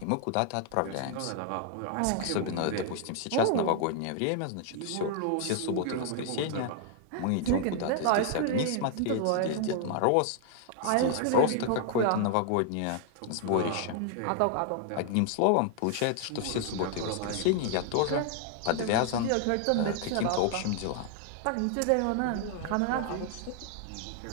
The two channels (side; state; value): both; different; correlation 0.00